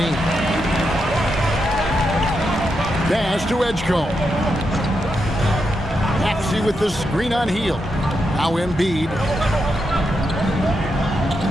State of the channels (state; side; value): normal; both; correlation 0.84